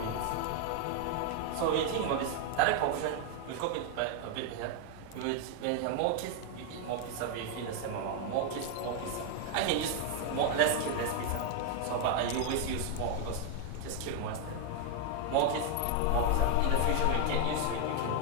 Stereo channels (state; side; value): different; both; correlation 0.00